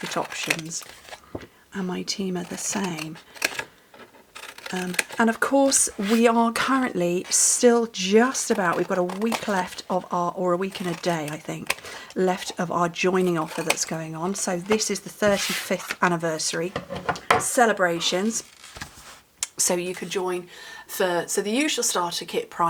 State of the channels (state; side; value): identical; both; correlation 1.00